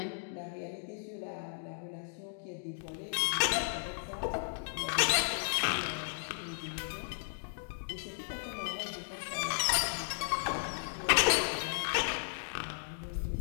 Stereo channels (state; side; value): silent; right; digital silence